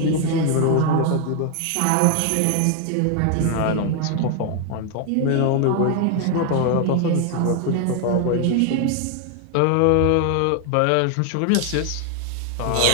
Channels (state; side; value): different; both; correlation 0.00